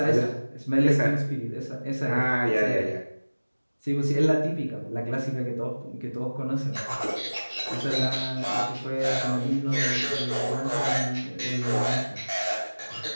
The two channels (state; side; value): inverted; both; correlation -1.00